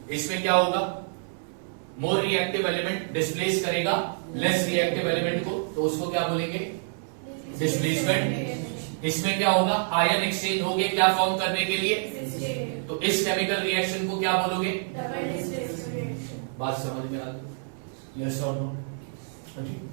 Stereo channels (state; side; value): silent; left; 60 dB below the other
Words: इसमें क्या होगा? मोर रिएक्टिव एलिमेंट डिस्प्लेस करेगा लेस रिएक्टिव एलिमेंट को, तो उसको क्या बोलेंगे? डिस्प्लेसमेंट। इसमें क्या होगा? आयन एक्सचेंज हो गए क्या फॉर्म करने के लिए? तो इस केमिकल रिएक्शन को क्या बोलोगे? बात समझ में आ गई? यस और नो?